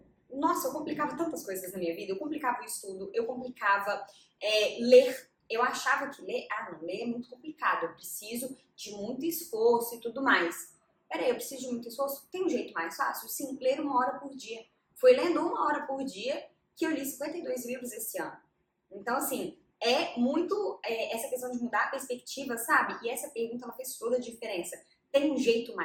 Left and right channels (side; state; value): both; identical; correlation 1.00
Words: complicava tantas coisas na minha vida. Eu complicava o estudo, eu complicava ler. Eu achava que ler é muito complicado. Eu preciso de muito esforço e tudo mais. Peraí, eu preciso de muito esforço? Tem um jeito mais fácil? Sim, ler 1 hora por dia. Foi lendo 1 hora por dia que eu li 52 livros esse ano. Então, assim, é muito essa questão de mudar a perspectiva, sabe? E essa pergunta, ela fez toda a diferença. Tem um jeito